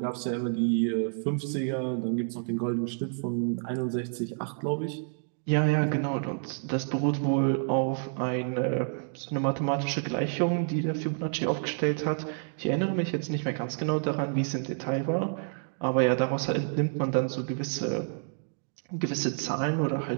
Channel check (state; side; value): silent; left; digital silence